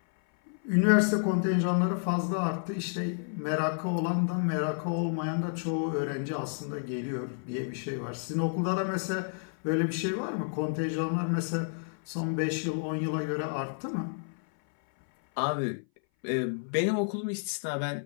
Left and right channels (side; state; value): right; silent; 58 dB below the other